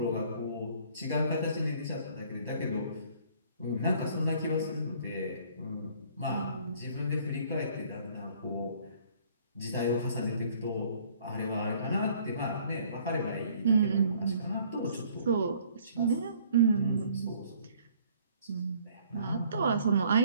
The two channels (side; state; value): both; inverted; correlation -0.58